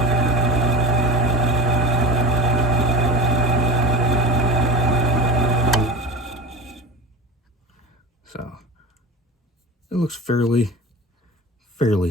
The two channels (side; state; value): both; normal; correlation 0.32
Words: So it looks fairly